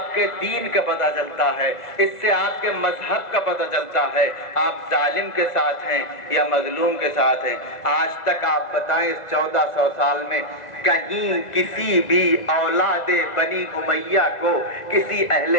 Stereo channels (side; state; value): right; late; 2.0 ms